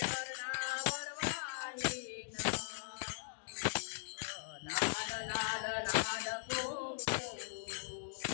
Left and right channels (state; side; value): silent; right; digital silence